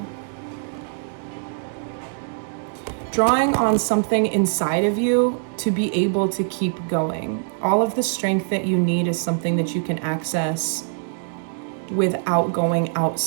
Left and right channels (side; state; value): left; silent; 63 dB below the other